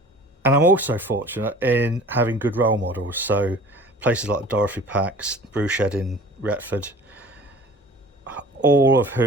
and I'm also fortunate in having good role models, so places like Dorothy Pack's Brew Shed in Retford, all of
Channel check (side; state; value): both; normal; correlation 0.44